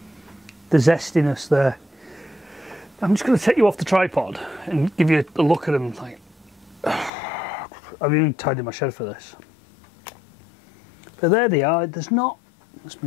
zestiness there. I'm just going to take you off the tripod and give you a look at them. Like, I've even tidied my shed for this. But there they are. There's not... Let's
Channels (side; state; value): right; drops out; at 7.1 s